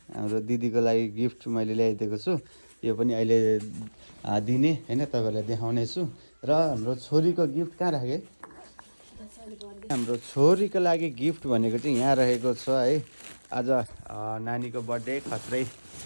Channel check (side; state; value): both; inverted; correlation -1.00